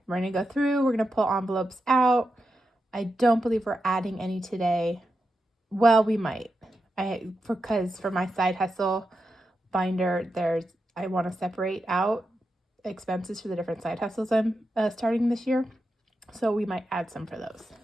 We're going to go through, we're going to pull envelopes out. I don't believe we're adding any today. Well, we might. Because for my side hustle binder, I want to separate out expenses for the different side hustles I'm starting this year. So we might add some for those.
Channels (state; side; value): normal; both; correlation 0.88